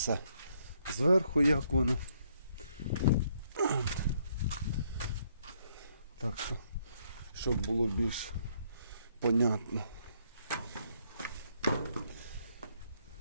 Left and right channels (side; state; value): both; inverted; correlation -0.71